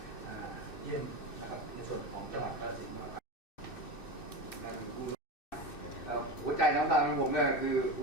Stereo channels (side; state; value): right; late; 2.6 ms